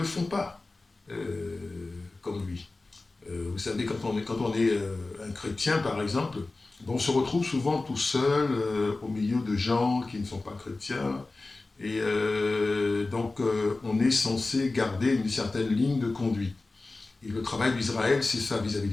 font pas comme lui. Vous savez, quand on est un chrétien, par exemple, on se retrouve souvent tout seul au milieu de gens qui ne sont pas chrétiens. Et donc, on est censé garder une certaine ligne de conduite. Et le travail d'Israël, c'est ça vis-à-vis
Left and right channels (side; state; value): right; quieter; 3.3 dB